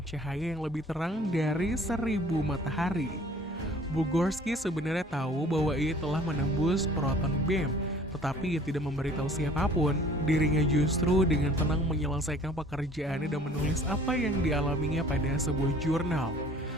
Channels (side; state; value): both; normal; correlation 0.52